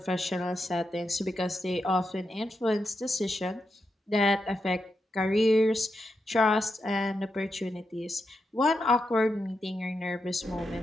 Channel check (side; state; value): both; normal; correlation 0.86